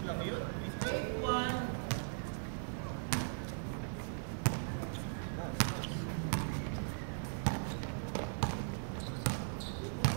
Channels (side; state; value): left; silent; 52 dB below the other